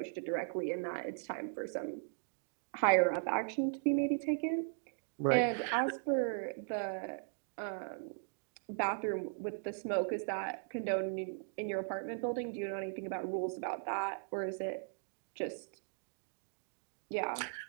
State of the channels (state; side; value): silent; left; digital silence